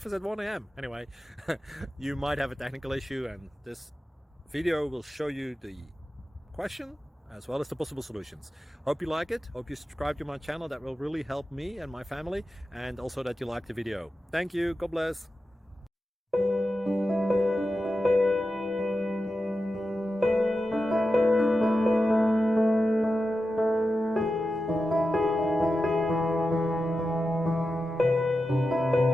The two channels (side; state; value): both; normal; correlation 0.91